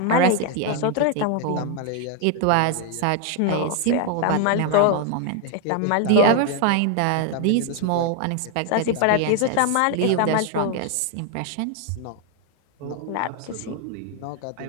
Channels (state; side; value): different; both; correlation 0.01